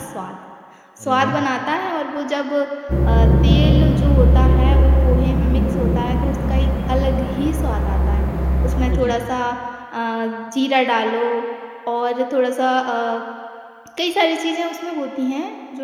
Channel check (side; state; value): both; identical; correlation 1.00